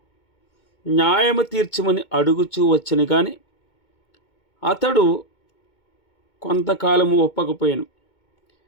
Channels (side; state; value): right; late; 2.2 ms